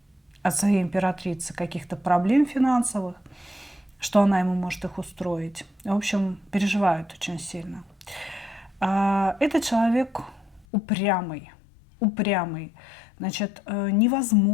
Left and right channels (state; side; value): drops out; right; at 10.7 s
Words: от своей императрицы каких-то проблем финансовых, что она ему может их устроить. В общем, переживает очень сильно. Этот человек упрямый. Значит,